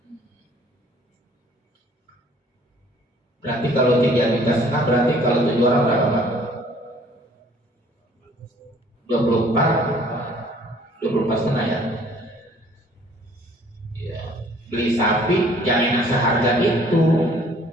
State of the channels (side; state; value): both; normal; correlation 0.57